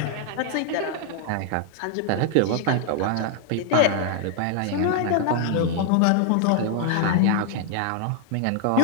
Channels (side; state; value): both; different; correlation 0.00